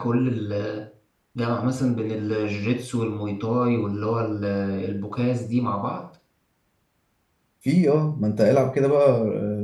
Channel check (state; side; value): identical; both; correlation 1.00